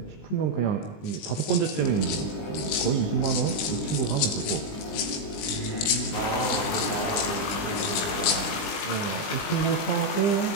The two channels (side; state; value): right; late; 20 ms